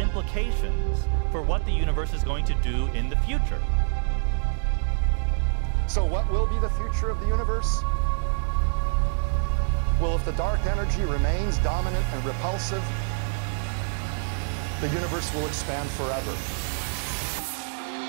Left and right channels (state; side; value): silent; left; 61 dB below the other